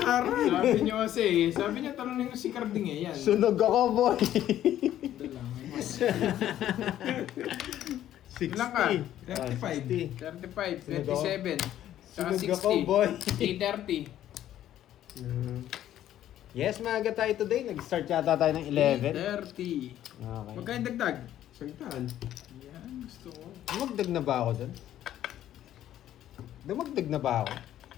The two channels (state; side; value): quieter; right; 12.1 dB